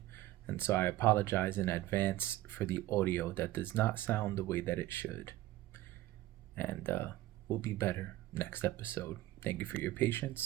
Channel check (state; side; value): quieter; left; 15.9 dB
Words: And so I apologize in advance for the audio that does not sound the way that it should. And we'll be better next episode. Thank you for your